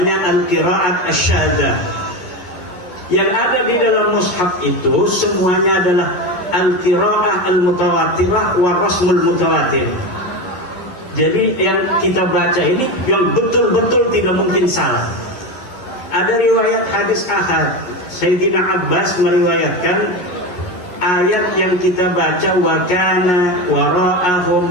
Al-Qiraat Asy-Syadzah. Yang ada di dalam mushaf itu semuanya adalah Al-Qiraah Al-Mutawatirah wa Rasmul Mutawatir. Jadi yang kita baca ini yang betul-betul tidak mungkin salah. Ada riwayat hadis ahad, Sayyidina Abbas meriwayatkan ayat yang kita baca, wa kana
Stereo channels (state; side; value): late; right; 11 ms